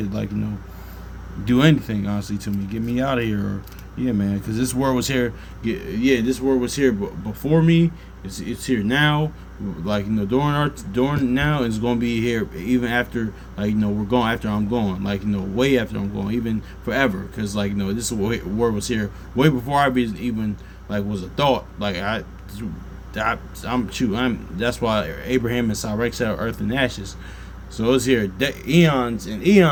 do anything, honestly, to me. Get me out of here, or, yeah, man, because this word was here. Yeah, this word was here before me. It's here now. During now, it's gonna be here even after, we're going after I'm gone. Way after I'm gone, even forever. Because this word was here way before I even was a thought. That's why Abraham and Sarah said earth and ashes. So it's here eons and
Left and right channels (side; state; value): both; identical; correlation 1.00